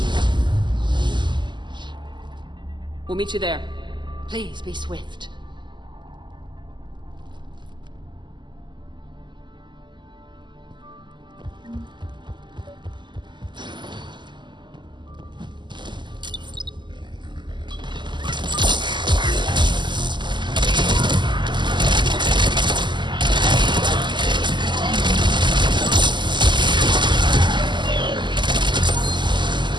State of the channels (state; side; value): late; left; 0.22 ms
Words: We'll meet you there. Please be swift.